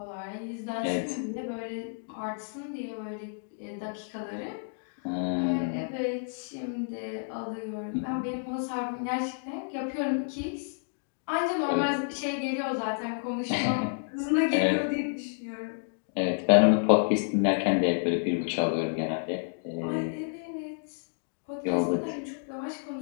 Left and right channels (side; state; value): right; silent; digital silence